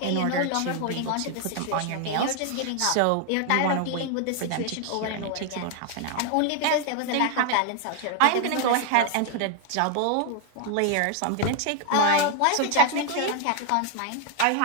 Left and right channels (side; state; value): both; different; correlation 0.00